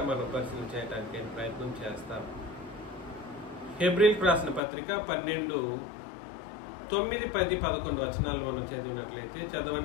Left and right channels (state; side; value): drops out; right; at 4.6 s